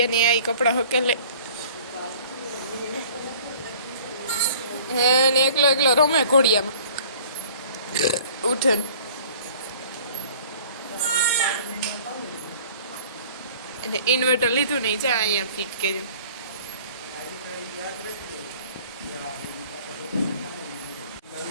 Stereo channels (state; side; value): inverted; both; correlation -0.50